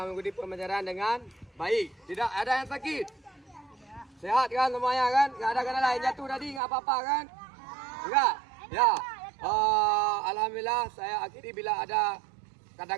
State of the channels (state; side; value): drops out; left; at 6.6 s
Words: mengikuti pembelajaran dengan baik. Tidak ada yang sakit. Sehat kan semuanya kan? Enggak ada kena lain jatuh tadi, enggak apa-apa kan? Enggak. Ya. Alhamdulillah saya akhiri bila ada